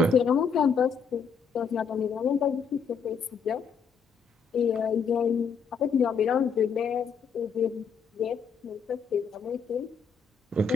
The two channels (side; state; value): right; quieter; 5.9 dB